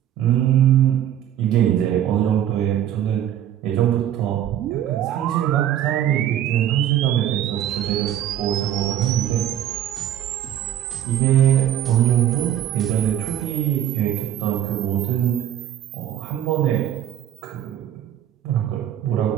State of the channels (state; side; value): quieter; left; 10.9 dB